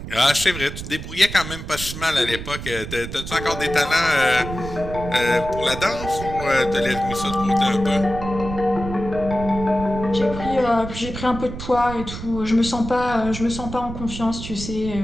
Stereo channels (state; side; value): noise; right; rumble, 9 dB below the sound